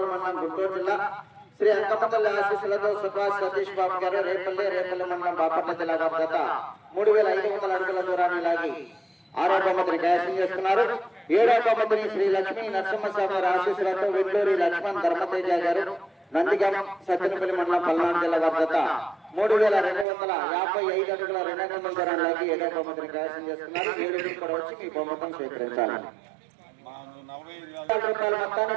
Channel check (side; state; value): left; drops out; at 20.1 s